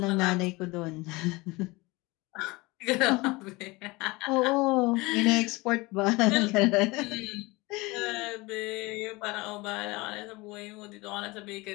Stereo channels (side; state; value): right; quieter; 23.2 dB